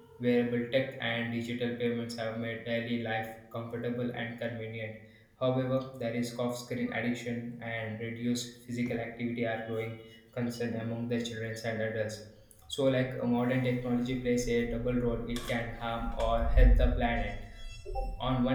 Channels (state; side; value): identical; both; correlation 1.00